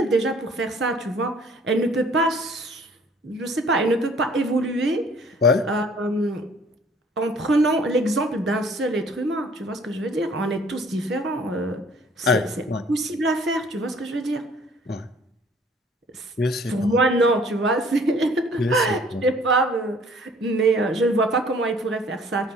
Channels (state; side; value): normal; both; correlation 0.56